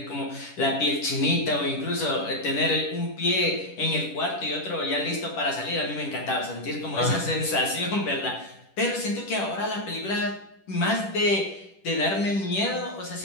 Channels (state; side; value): late; right; 10 ms